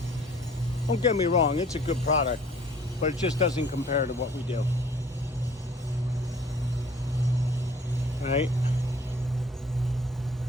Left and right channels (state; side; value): normal; both; correlation 0.53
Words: get me wrong, it's a good product, but it just doesn't compare to what we do. Right?